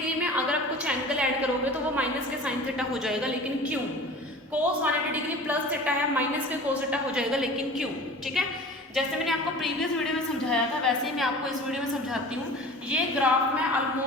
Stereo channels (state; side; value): normal; both; correlation 0.40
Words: में अगर आप कुछ एंगल ऐड करोगे तो वो माइनस के साइन थीटा हो जाएगा, लेकिन क्यों। कोस 180 डिग्री प्लस थीटा है, माइनस के कोस थीटा हो जाएगा, लेकिन क्यों। ठीक है, जैसे मैंने आपको प्रीवियस वीडियो में समझाया था वैसे ही मैं आपको इस वीडियो में समझाती हूँ। ये ग्राफ मैं